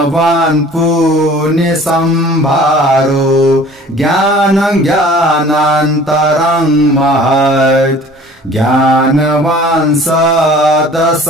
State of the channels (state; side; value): normal; both; correlation 0.48